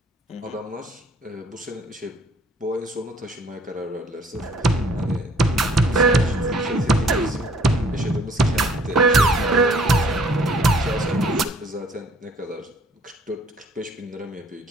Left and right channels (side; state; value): both; normal; correlation 0.59